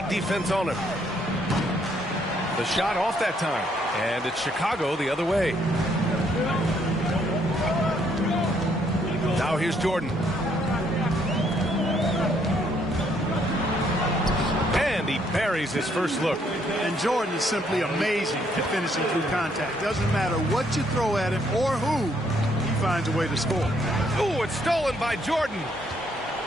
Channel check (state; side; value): normal; both; correlation 0.70